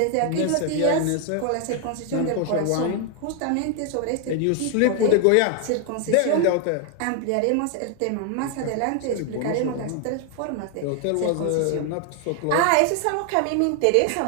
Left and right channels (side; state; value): both; different; correlation 0.00